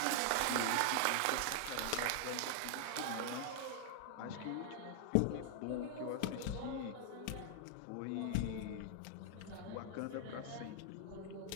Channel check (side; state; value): both; different; correlation 0.00